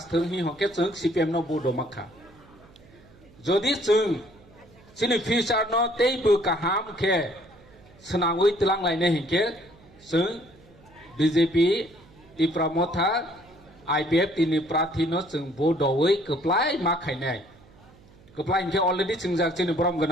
হি হকে जों CPM ন বুডো মাখা যদি जों চিনি ফিউচার ন তেই বু কাহাম খে সনাংই তলাং লাইনে হিকে जों BJP Tipra Motha IPF tini prathi no जों बुडोयै कप्लाय माखायनाय Keplai ke already chingjak chini borom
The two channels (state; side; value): noise; right; hum, 26 dB below the sound